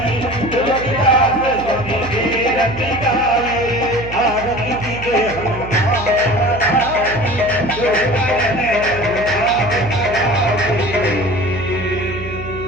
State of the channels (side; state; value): right; noise; hum, 11 dB below the sound